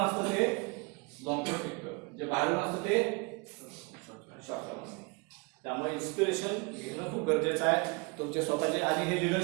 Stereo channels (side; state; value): left; quieter; 30.0 dB